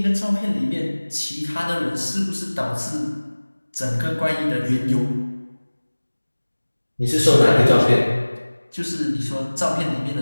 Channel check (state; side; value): inverted; both; correlation -1.00